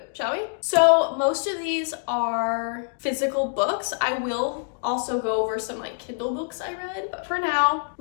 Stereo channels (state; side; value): silent; right; digital silence